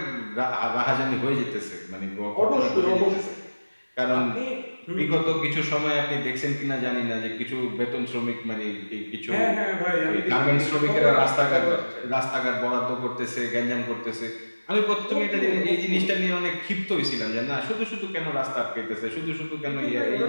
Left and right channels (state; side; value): inverted; both; correlation -1.00